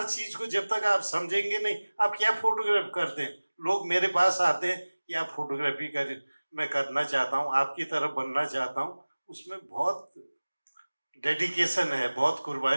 चीज को जब तक आप समझेंगे नहीं, आप क्या फोटोग्राफ करते हैं। लोग मेरे पास आते हैं कि आप फोटोग्राफी कर, मैं करना चाहता हूँ, आपकी तरफ बनना चाहता हूँ। उसमें बहुत डेडिकेशन है, बहुत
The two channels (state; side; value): inverted; both; correlation -1.00